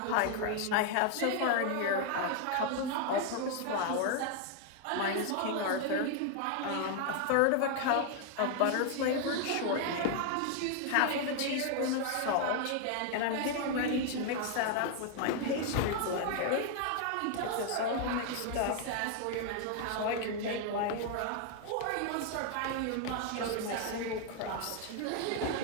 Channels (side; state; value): both; different; correlation 0.00